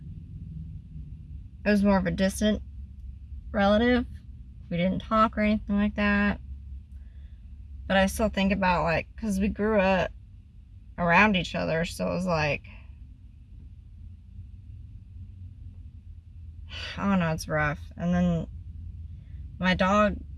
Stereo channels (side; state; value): both; identical; correlation 1.00